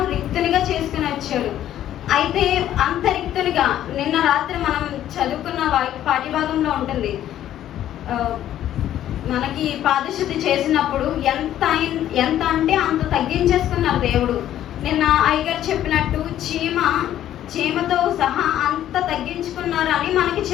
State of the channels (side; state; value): right; quieter; 11.8 dB